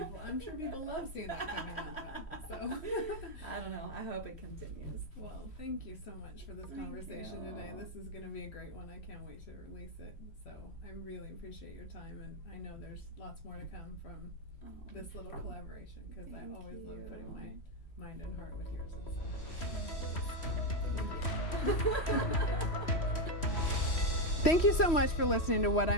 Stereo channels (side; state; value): right; late; 3.1 ms